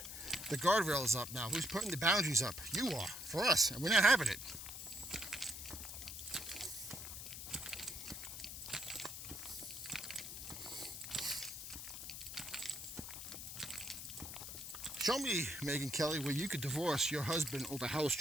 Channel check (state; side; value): noise; left; hiss, 8 dB below the sound